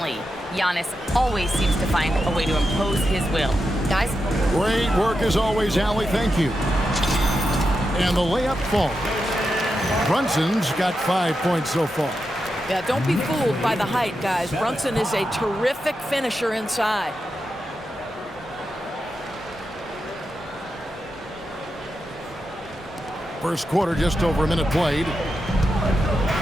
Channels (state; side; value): normal; both; correlation 0.88